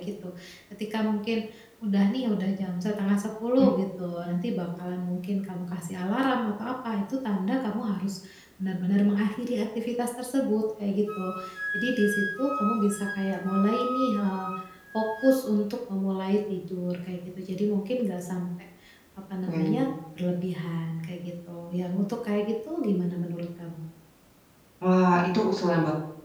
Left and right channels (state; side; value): identical; both; correlation 1.00